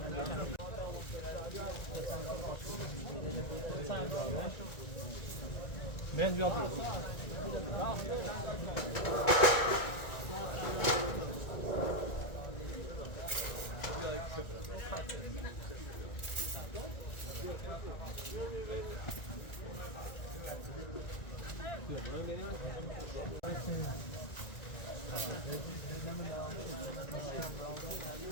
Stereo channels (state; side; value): late; right; 1.9 ms